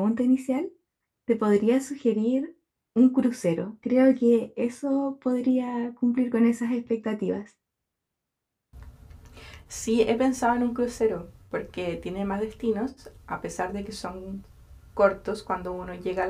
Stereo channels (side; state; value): both; identical; correlation 1.00